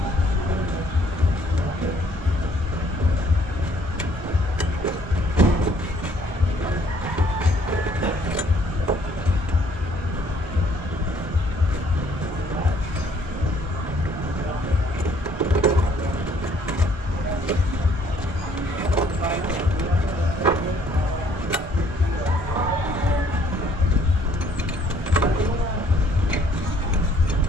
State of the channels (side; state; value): both; normal; correlation 0.62